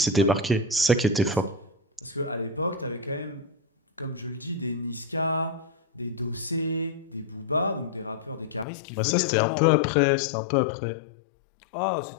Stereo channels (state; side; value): drops out; right; at 8.7 s